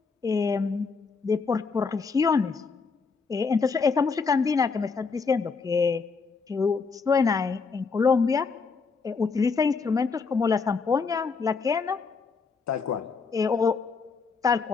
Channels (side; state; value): right; quieter; 4.9 dB